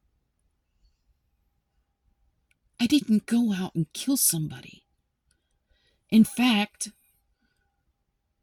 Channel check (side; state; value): both; identical; correlation 1.00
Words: I didn't go out and kill somebody. In fact,